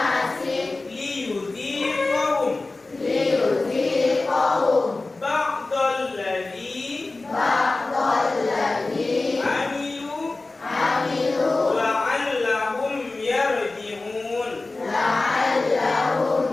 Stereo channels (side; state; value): right; quieter; 3.3 dB